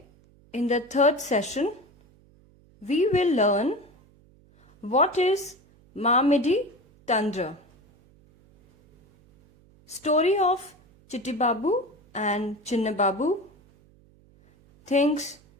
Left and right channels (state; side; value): noise; right; hum, 30 dB below the sound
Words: in the third session we will learn what is Mamidi Tandra. Story of Chitti Babu and Chinna Babu. Things